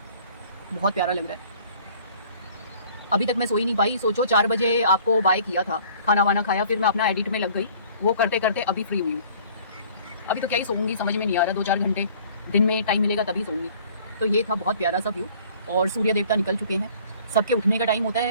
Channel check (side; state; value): both; inverted; correlation -0.53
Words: बहुत प्यारा लग रहा है। अभी तक मैं सोई नहीं पाई। सोचो 4 बजे आपको बाय किया था, खाना वाना खाया, फिर मैं अपना एडिट में लग गई। वो करते करते अभी फ्री हुई हूँ। अभी तो क्या ही सोऊंगी, समझ में नहीं आ रहा। 2-4 घंटे दिन में टाइम मिलेगा तभी सोऊंगी। तो ये था बहुत प्यारा सा व्यू और सूर्य देवता निकल चुके हैं। सबके उठने का टाइम होता